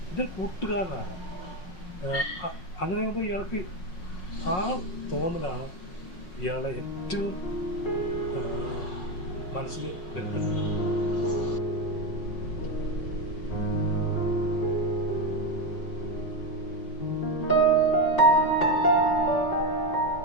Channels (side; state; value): right; late; 5.5 ms